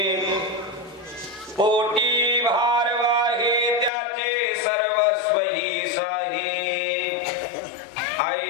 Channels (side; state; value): right; drops out; at 3.9 s